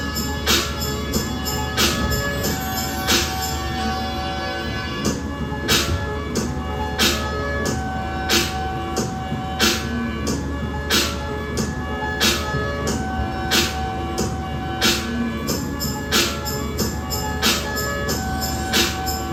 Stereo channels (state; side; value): identical; both; correlation 1.00